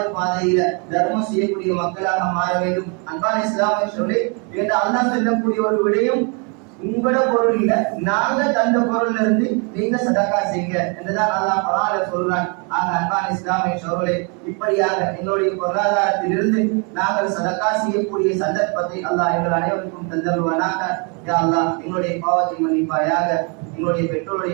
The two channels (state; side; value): quieter; left; 35.3 dB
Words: பாதையில தர்மம் செய்யக்கூடிய மக்களாக மாற வேண்டும். அன்பான இஸ்லாமிய சகோதரர்களே, என்று அல்லாஹ் சொல்லக்கூடிய ஒரு விடயம், உங்களோட பொருள் இல்ல, நாங்க தந்த பொருள்ல இருந்து நீங்க சதக்கா செய்யுங்க என்றுதான் அல்லாஹ் குர்ஆன்ல சொல்றான். ஆக அன்பான இஸ்லாமிய சகோதரர்களே, இப்படியாக எங்களுடைய பொருளாதாரத்திலிருந்து நாங்கள் சதக்கா செய்யக்கூடிய சந்தர்ப்பத்தை அல்லாஹ் எங்கள் அனைவருக்கும் தந்தருவானாக. யா அல்லாஹ், எங்களுடைய பாவத்தை மன்னிப்பாயாக, எங்களுடைய